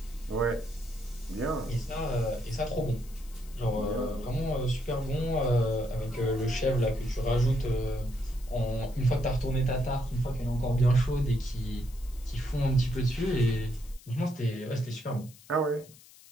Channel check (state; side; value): noise; left; hiss, 23 dB below the sound